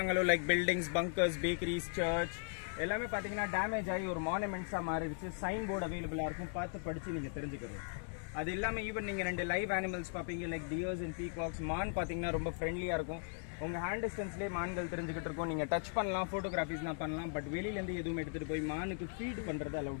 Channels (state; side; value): silent; right; 52 dB below the other